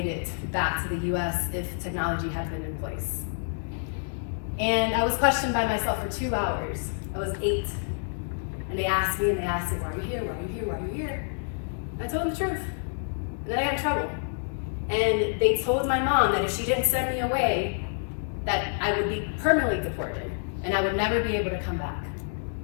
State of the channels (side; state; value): right; silent; digital silence